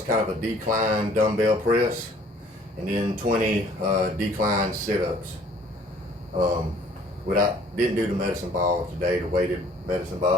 kind of a decline dumbbell press, and then 20 decline sit-ups. Didn't do the medicine ball today, the weighted medicine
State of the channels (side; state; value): both; normal; correlation 0.56